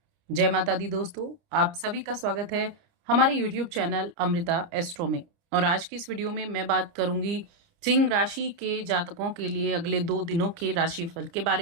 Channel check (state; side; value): late; left; 29 ms